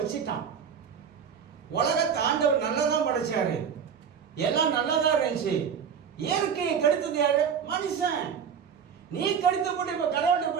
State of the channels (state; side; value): quieter; left; 7.2 dB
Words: உலகத்தை ஆண்டவர் நல்லதான் படைச்சாரு, எல்லாம் நல்லதா இருந்துச்சு. இயற்கையை கெடுத்தது யாரு? மனுஷன். நீ கெடுத்து போட்டு இப்ப கடவுள்கிட்ட